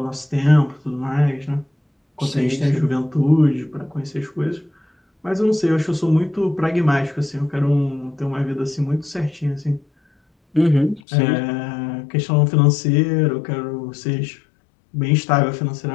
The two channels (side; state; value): right; drops out; at 11.0 s